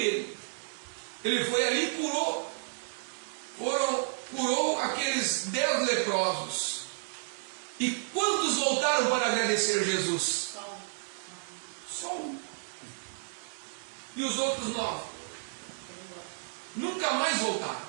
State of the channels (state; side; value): silent; left; 57 dB below the other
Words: Ele foi ali e curou aqueles 10 leprosos. E quantos voltaram para agradecer Jesus? Só um. E os outros 9? Nunca mais voltaram.